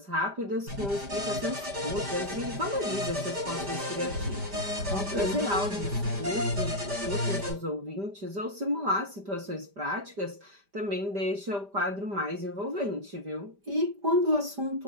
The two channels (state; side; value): late; left; 5.0 ms